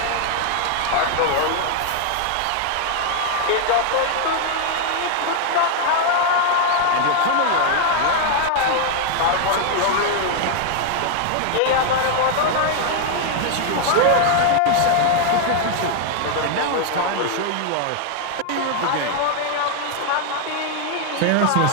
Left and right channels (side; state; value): both; different; correlation 0.00